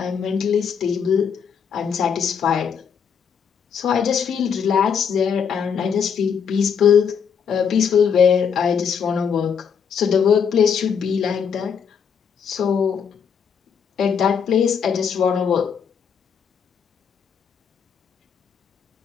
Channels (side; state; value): right; quieter; 7.0 dB